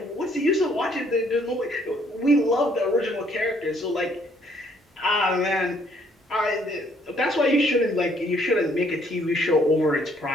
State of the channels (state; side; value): normal; both; correlation 0.65